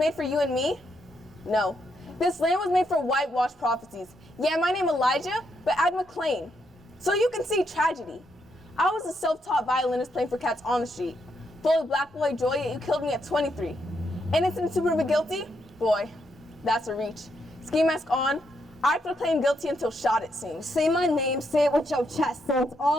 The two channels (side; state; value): both; normal; correlation 0.78